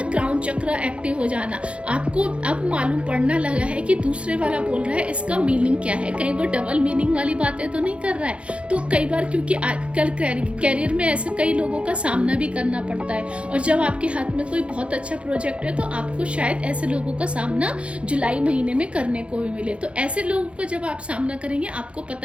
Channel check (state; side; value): late; left; 0.060 ms